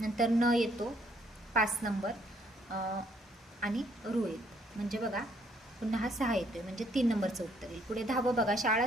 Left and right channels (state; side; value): normal; both; correlation 0.67